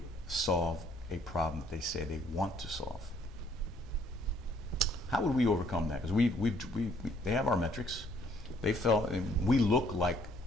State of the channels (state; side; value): normal; both; correlation 0.64